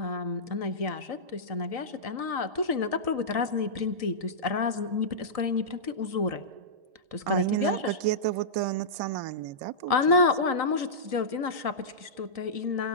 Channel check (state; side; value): late; left; 1.7 ms